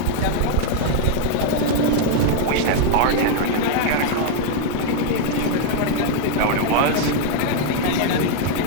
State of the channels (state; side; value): different; both; correlation 0.00